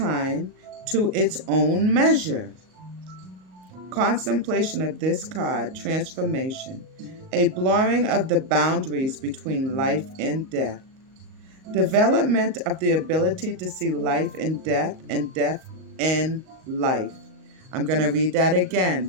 to its own measure. Contemplation of this card, transformation, a blurring of the boundaries between life and death. Development of the ability to see life in death and death in life. I'm going to read that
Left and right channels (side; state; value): left; late; 38 ms